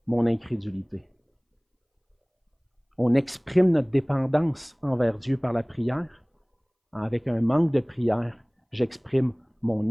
mon incrédulité. On exprime notre dépendance envers Dieu par la prière. Avec un manque de prière, j'exprime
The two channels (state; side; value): identical; both; correlation 1.00